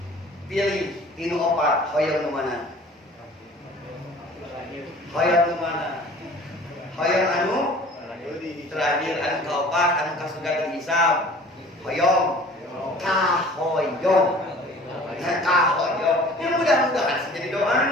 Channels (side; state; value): both; normal; correlation 0.47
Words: Pilih tinu opat hoyong nu mana? Hoyong nu mana? Hoyong anu terakhir anu kaopat anu ka surga teu dihisab. Hoyong kahoyong. Kahoyong, yang mudah-mudahan sing jadi